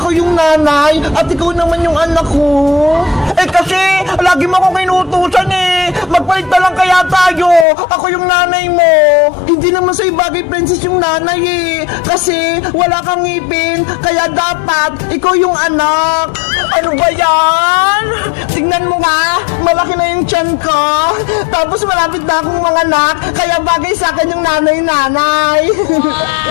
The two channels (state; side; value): drops out; right; at 7.7 s